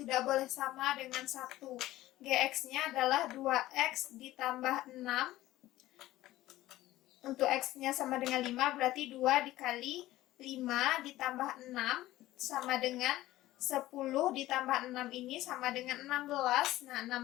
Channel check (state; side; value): quieter; right; 16.0 dB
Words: boleh sama dengan 1. Gx-nya adalah 2x ditambah 6. Untuk x-nya sama dengan 5, berarti 2 dikali 5 ditambah 6 sama dengan 10 ditambah 6 ini sama dengan 16. Nah,